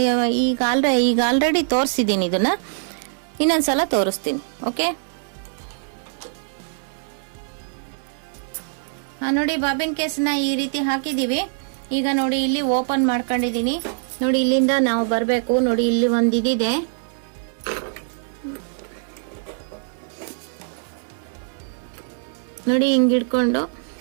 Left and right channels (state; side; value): silent; left; digital silence